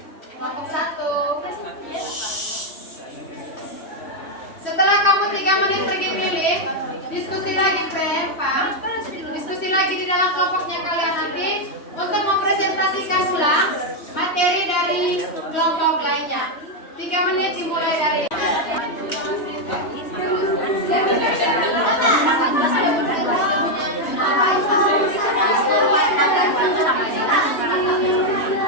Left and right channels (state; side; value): late; right; 3.1 ms